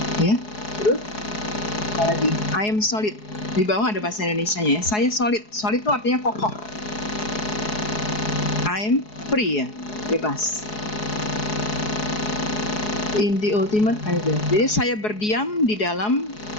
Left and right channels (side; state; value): right; late; 4.7 ms